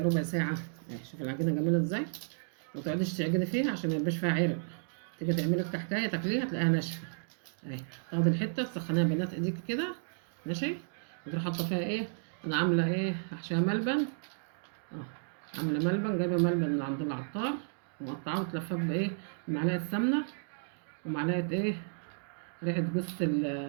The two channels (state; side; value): silent; left; digital silence